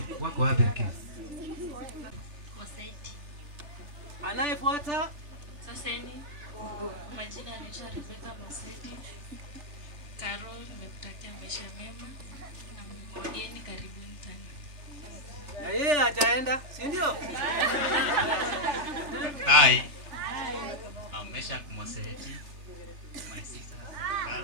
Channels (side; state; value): left; late; 3.4 ms